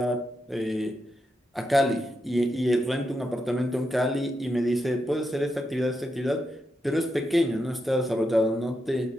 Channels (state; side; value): normal; both; correlation 0.84